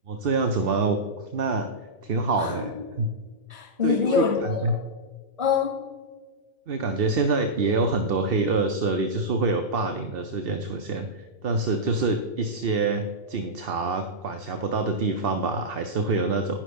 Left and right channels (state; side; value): late; left; 2.7 ms